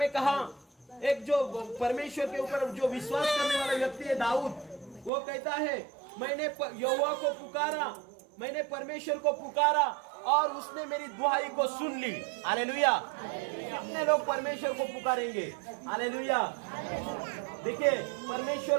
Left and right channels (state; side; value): drops out; left; at 5.1 s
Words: कहा, एक जो परमेश्वर के ऊपर जो विश्वास करने वाला व्यक्ति है दाऊद, वो कहता है मैंने यहोवा को पुकारा, मैंने परमेश्वर को पुकारा और उसने मेरी दुहाई को सुन ली। हालेलुया। कितने लोग परमेश्वर को पुकारेंगे? हालेलुया। देखिए,